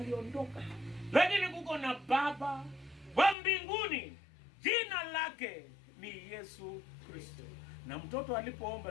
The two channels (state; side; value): drops out; right; at 3.4 s